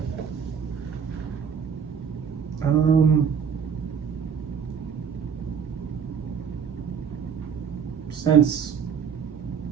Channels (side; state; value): left; quieter; 7.0 dB